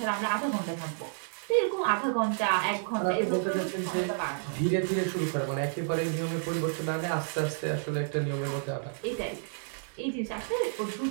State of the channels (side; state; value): left; silent; 58 dB below the other